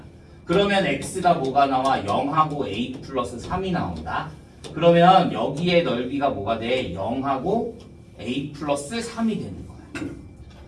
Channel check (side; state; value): both; identical; correlation 1.00